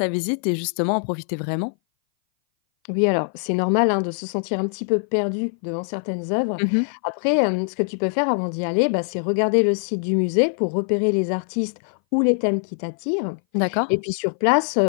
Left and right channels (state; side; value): silent; right; 59 dB below the other